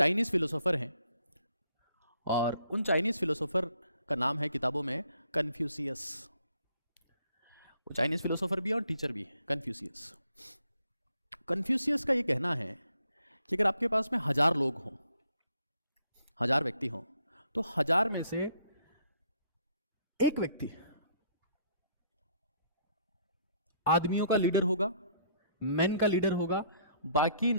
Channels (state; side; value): inverted; both; correlation -0.66